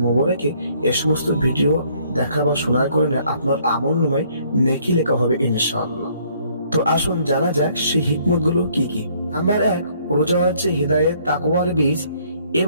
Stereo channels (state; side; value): inverted; both; correlation -0.64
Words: মুবারকে এই সমস্ত ভিডিও দেখা বা শোনার কারণে আপনার আমলনামায় নেকি লেখা হবে ইনশাআল্লাহ। তো আসুন জানা যাক সেই হিকমতগুলো কি কি। নাম্বার 1, রোজা হচ্ছে হিদায়াত তাকওয়ার বীজ